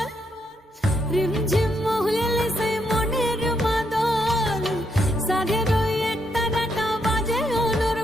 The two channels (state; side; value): normal; both; correlation 0.78